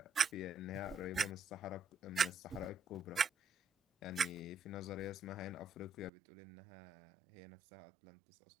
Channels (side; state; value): left; drops out; at 6.1 s